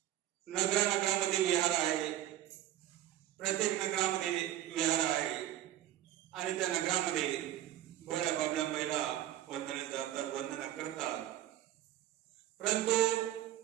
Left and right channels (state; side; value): quieter; left; 12.7 dB